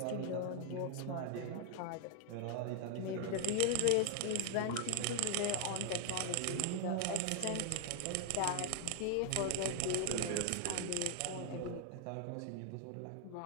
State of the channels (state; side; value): different; both; correlation 0.00